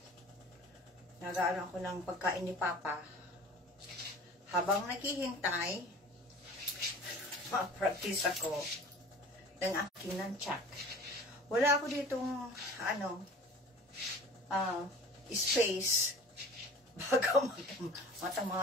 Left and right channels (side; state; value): both; normal; correlation 0.42